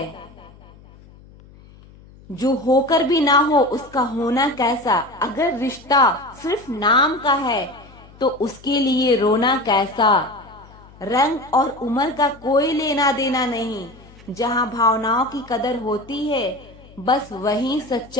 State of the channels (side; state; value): left; noise; hum, 23 dB below the sound